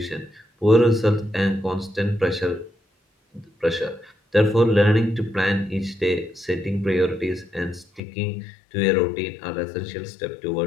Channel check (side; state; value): right; drops out; at 8.0 s